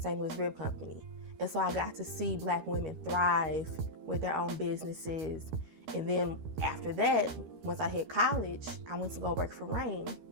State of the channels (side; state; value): left; late; 13 ms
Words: Louis Rib Company. And so I got to see Black women thrive with their own businesses. And then after that, once I hit college, I went to go work for Rain